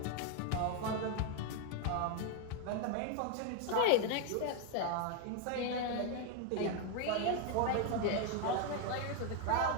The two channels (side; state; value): both; different; correlation 0.01